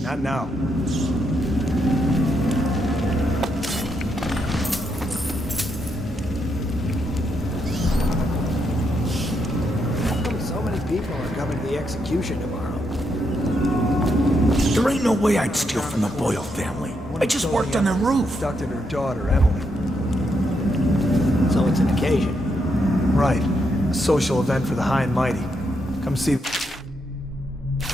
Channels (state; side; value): normal; both; correlation 0.79